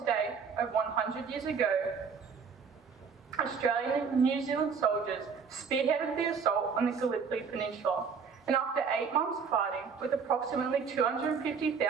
over 100 years ago, Australian and New Zealand soldiers spearheaded the assault on the Gallipoli Peninsula, and after 8 months fighting, with approximately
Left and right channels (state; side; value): quieter; left; 5.9 dB